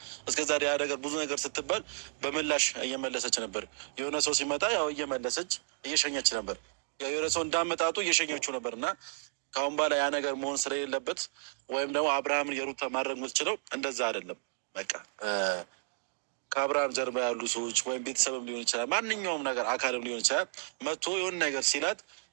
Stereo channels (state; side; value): silent; left; digital silence